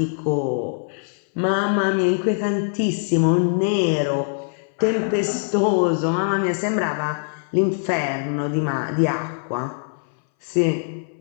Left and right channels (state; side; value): silent; right; 61 dB below the other